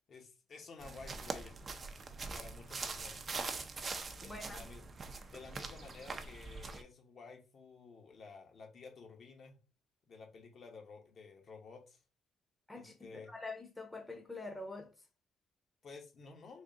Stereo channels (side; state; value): both; normal; correlation 0.82